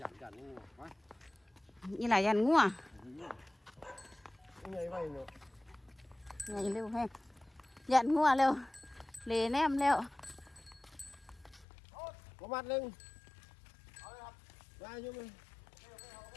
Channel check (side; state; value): right; drops out; at 11.7 s